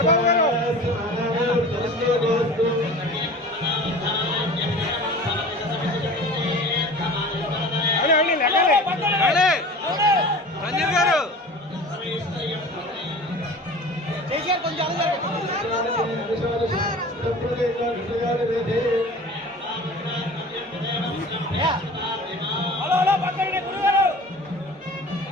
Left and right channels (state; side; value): normal; both; correlation 0.39